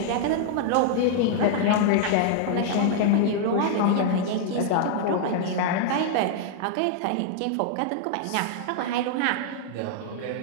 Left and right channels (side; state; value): both; different; correlation -0.01